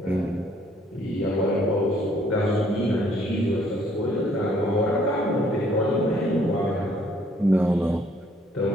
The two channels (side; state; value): both; normal; correlation 0.64